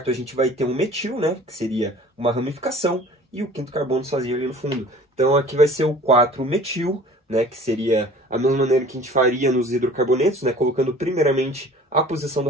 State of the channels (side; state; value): both; normal; correlation 0.47